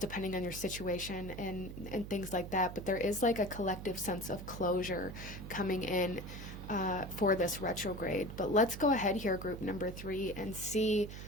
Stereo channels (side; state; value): right; noise; hum, 10 dB below the sound